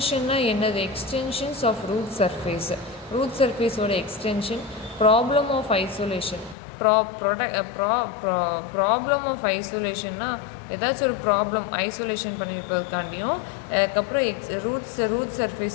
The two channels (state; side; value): drops out; right; at 6.6 s